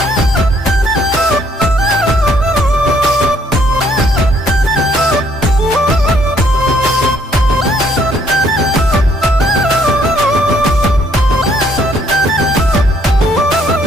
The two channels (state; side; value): normal; both; correlation 0.66